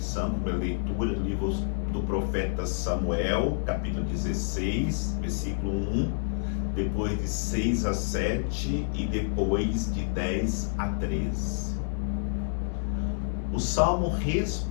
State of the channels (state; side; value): silent; right; digital silence